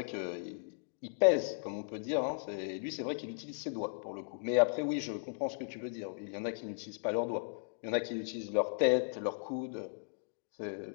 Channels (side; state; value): right; silent; digital silence